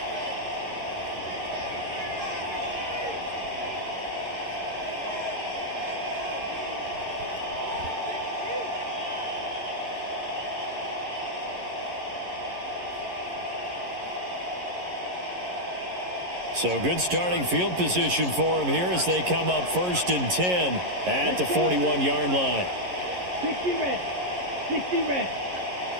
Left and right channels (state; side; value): late; left; 11 ms